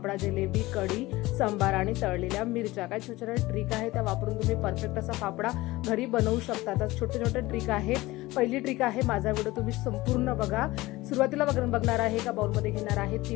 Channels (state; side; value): quieter; right; 19.4 dB